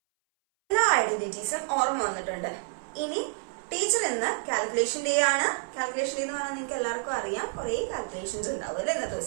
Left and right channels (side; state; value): left; silent; 58 dB below the other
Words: എല്ലാ ഐഡന്റിറ്റീസും ഓർമ്മ വന്നിട്ടുണ്ട്. ഇനി ടീച്ചർ ഇന്ന് കാൽക്കുലേഷൻ ഡേ ആണ്. കാൽക്കുലേഷൻ ഡേ എന്ന് പറഞ്ഞാൽ നിങ്ങൾക്ക് എല്ലാവർക്കും അറിയാം, കുറെ കാൽക്കുലേഷൻസ് ഉണ്ടാവും അല്ലെ ഇന്നത്തെ